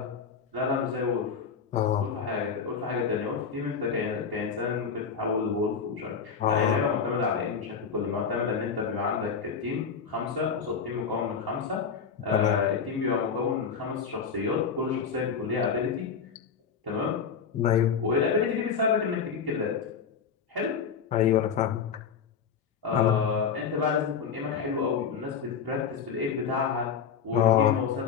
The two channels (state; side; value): quieter; right; 6.4 dB